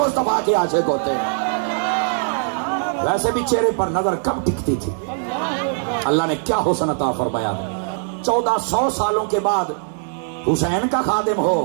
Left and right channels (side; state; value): left; silent; 58 dB below the other